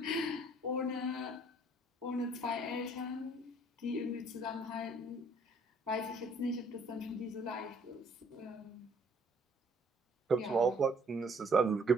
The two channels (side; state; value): both; normal; correlation 0.61